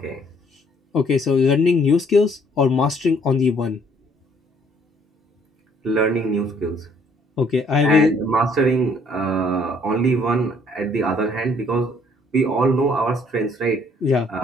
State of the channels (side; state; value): both; normal; correlation 0.62